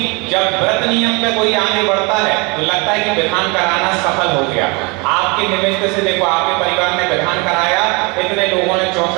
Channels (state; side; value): quieter; left; 28.7 dB